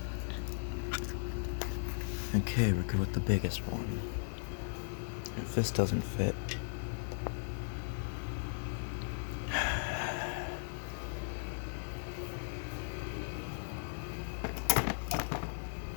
Okay, we'll go with the biggest one. If this doesn't fit,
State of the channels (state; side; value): silent; right; digital silence